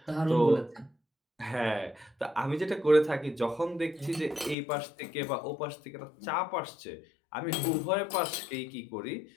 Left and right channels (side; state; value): right; drops out; at 4.5 s